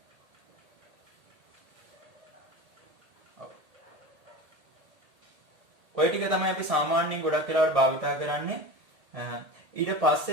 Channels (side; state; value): left; late; 1.8 ms